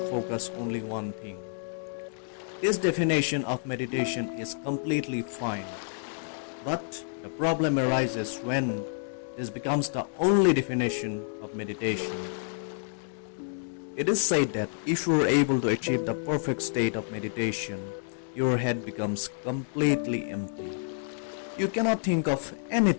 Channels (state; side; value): silent; right; digital silence